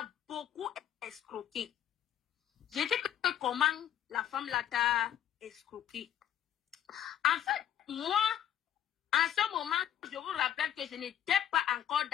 beaucoup escroqué. J'ai dit que comment la femme là t'a escroqué. En fait, moi, en ce moment, je vous rappelle que je n'étais pas encore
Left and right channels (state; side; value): quieter; right; 10.4 dB